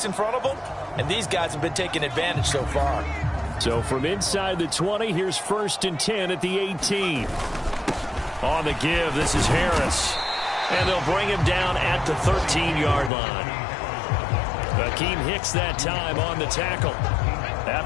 in front of them, and these guys have been taking advantage so far. So from inside the 20, here's 1st and 10 at the 18. On the give, this is Harris. And they'll bring him down at the 13-yard line. Akeem Hicks that time on the tackle.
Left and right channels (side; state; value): right; drops out; at 13.1 s